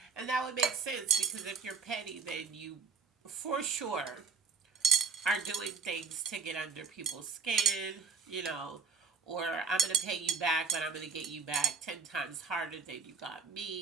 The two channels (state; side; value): quieter; left; 5.3 dB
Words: And that would make sense, because if you're petty, then you for sure are doing things to get under people's skin, or I'm going to pay you back, but I'm going to get you back 10 times harder than you got